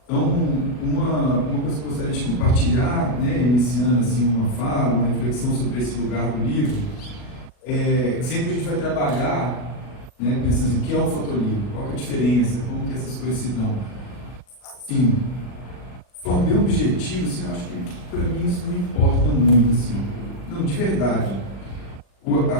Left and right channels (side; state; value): right; late; 39 ms